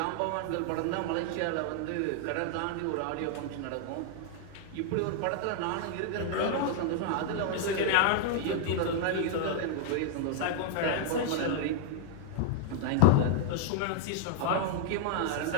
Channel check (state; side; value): different; both; correlation -0.01